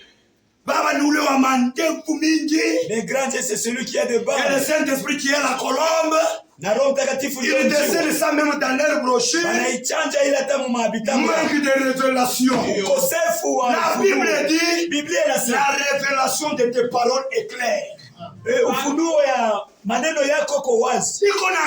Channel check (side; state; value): both; identical; correlation 1.00